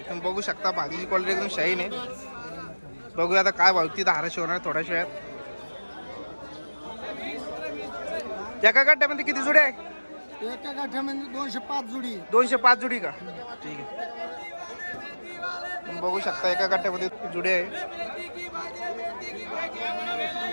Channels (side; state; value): both; inverted; correlation -1.00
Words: तुम्ही बघू शकता भाजीची क्वालिटी एकदम शाईन आहे. बघूया आता काय भाव ती 1200 होणार थोड्या वेळात. एका गड्ड्यामध्ये किती जुडे आहे? एका गाठ्यामध्ये 205 जुडी. 205 जुडी का? ठीक आहे. तुम्ही बघू शकता एका गड्ड्यामध्ये जुडे आहे.